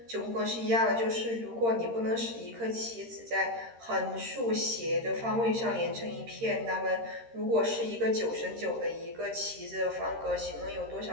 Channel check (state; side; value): late; left; 13 ms